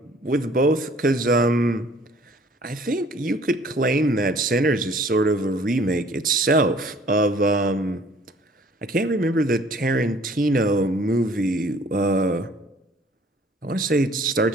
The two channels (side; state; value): both; normal; correlation 0.55